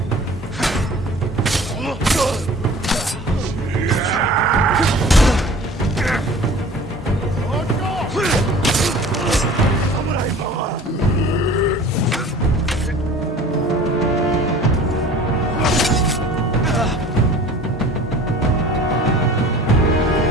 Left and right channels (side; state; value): both; normal; correlation 0.44